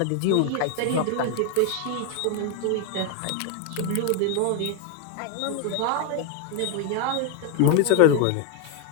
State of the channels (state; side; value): different; both; correlation 0.01